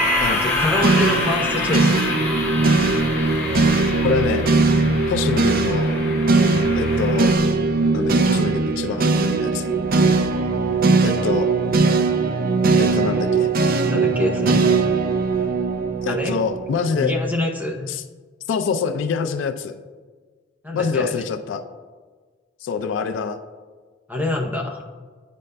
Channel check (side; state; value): both; normal; correlation 0.47